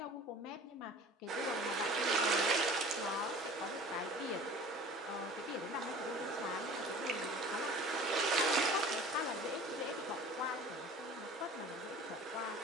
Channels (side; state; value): both; normal; correlation 0.43